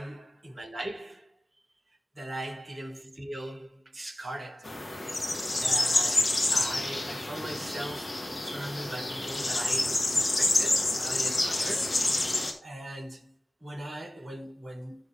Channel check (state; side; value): normal; both; correlation 0.97